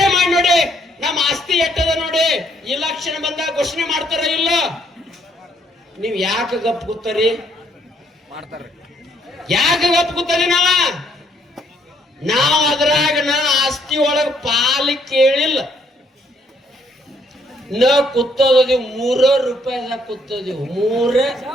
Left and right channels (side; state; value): both; normal; correlation 0.68